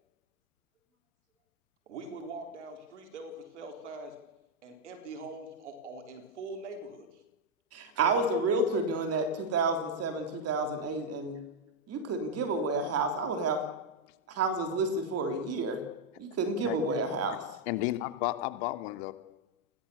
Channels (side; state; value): both; normal; correlation 0.00